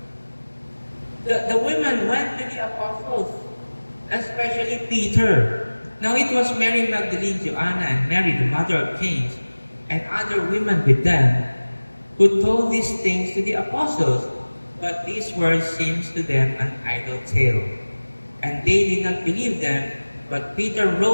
the women went to the apostles, especially Peter. Now it was Mary Magdalene, Joanna, and Mary, the mother of James, and other women with them, who told these things to the apostles. But these words seemed to them an idle tale, and they did not believe them. But Peter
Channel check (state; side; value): inverted; both; correlation -1.00